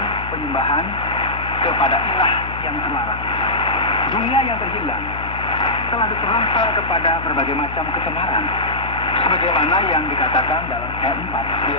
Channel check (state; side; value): noise; left; hum, 10 dB below the sound